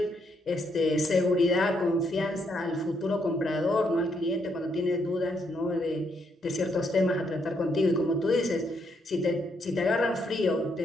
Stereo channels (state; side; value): normal; both; correlation 0.75